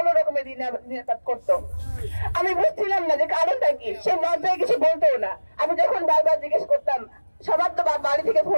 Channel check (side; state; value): both; inverted; correlation -1.00